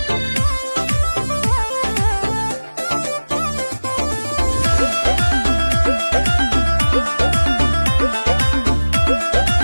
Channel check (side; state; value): both; inverted; correlation -1.00